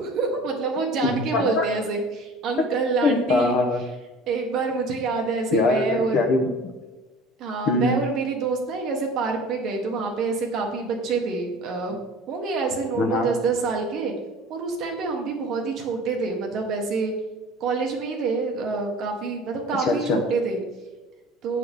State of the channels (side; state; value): both; normal; correlation 0.43